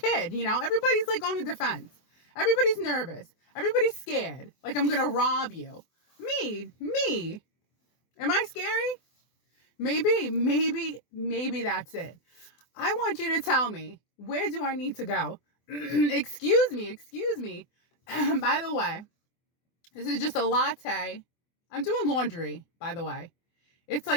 Everybody's like on the defense. Everybody's nervous. Everybody's scared. Like I'm going to rob you. Me. Am I scary? Maybe that's it. I want you to tell me, where do I need to go? Excuse me. By the way, this is just a latte. I'm doing laundry, by the way. It's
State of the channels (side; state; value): right; late; 24 ms